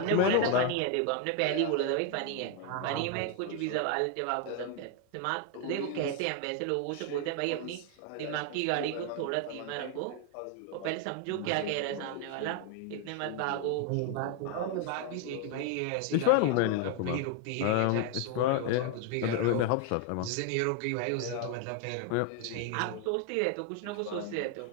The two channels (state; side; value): different; both; correlation 0.01